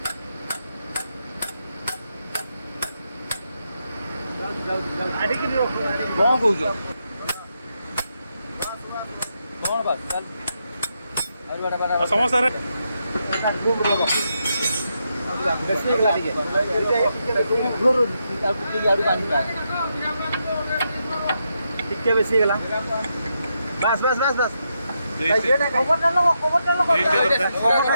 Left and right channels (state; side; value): inverted; both; correlation -0.83